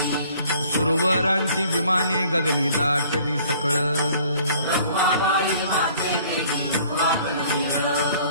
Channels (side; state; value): both; inverted; correlation -0.55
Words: सुरवरांची विमाने गगनी दाटली सकळ